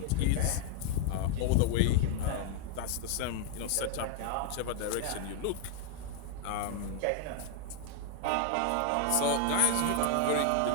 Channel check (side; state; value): both; different; correlation 0.00